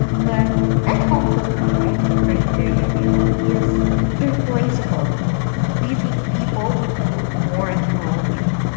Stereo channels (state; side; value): silent; right; digital silence